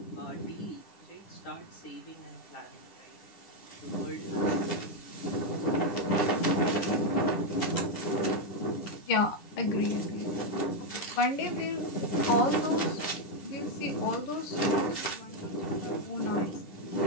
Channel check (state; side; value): late; right; 10 ms